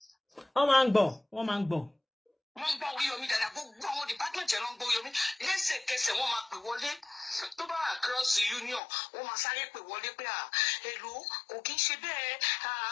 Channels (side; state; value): right; drops out; at 8.8 s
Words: Wọ́n máa ń gbọ́. Wọ́n ń gbọ́ Oriyomi dáadáa gbogbo àwọn department yẹn ló ń gbọ́ Oriyomi lẹ́sẹ̀kẹsẹ̀ wọ́n máa pè wọlé tó bá across the union wọ́n máa sáré pè wọlé pé èlò kò kí ń ṣe bẹ́ẹ̀